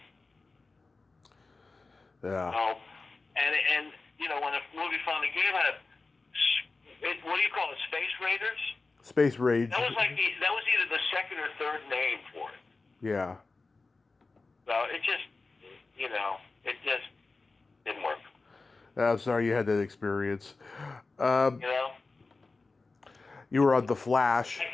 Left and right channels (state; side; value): quieter; right; 3.7 dB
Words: Yeah. So, and you know, when a movie finally came out, what do you call it, Space Raiders? Space Rage. That was either the second or third name for it. Yeah. So it just, you know, it just didn't work. I'm sorry you had that experience. You know? You were on The Flash. I